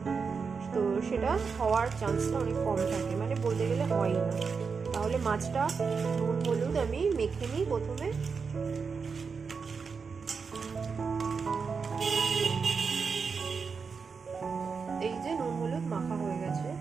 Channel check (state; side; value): quieter; left; 5.4 dB